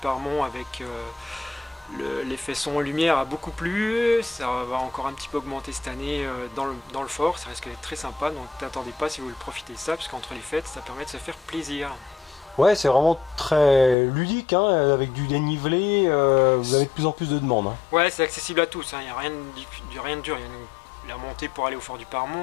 avec l'effet son lumière a beaucoup plu. Ça va encore un petit peu augmenter cette année dans le fort. Ça risque d'être très sympa. Donc n'attendez pas si vous voulez profiter de ça parce qu'entre les fêtes, ça permet de se faire plaisir. Ouais, c'est vraiment très ludique, hein, avec du dénivelé. Vous avez de plus en plus de demandes. Hein. Ouais, c'est accessible à tous. Il n'y a rien de dur. Il y a la montée pour aller au Fort du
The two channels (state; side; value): drops out; right; at 14.0 s